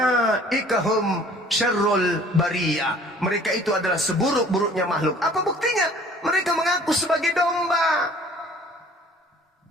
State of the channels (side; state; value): both; normal; correlation 0.52